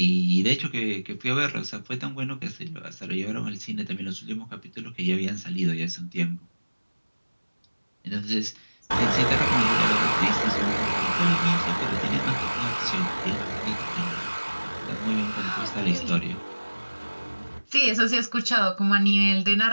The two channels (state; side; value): inverted; both; correlation -1.00